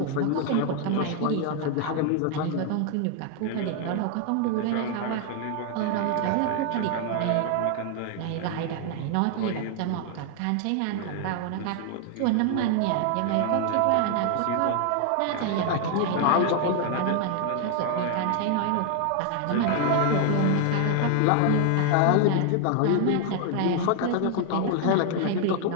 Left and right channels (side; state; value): both; different; correlation 0.00